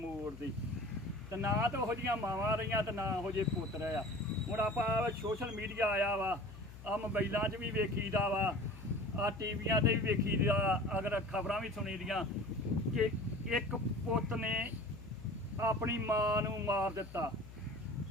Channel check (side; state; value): left; noise; hum, 15 dB below the sound